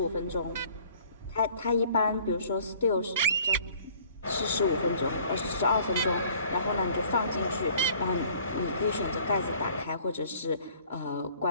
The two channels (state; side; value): inverted; both; correlation -0.54